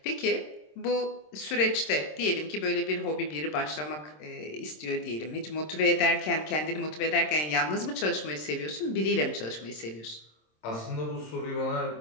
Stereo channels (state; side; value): late; right; 26 ms